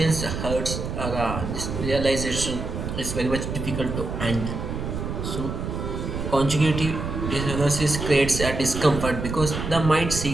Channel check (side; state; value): right; noise; rumble, 5 dB below the sound